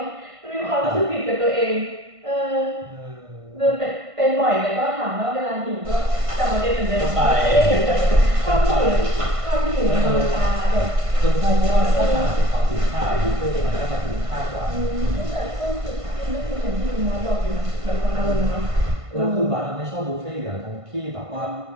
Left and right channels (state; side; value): late; left; 1.5 ms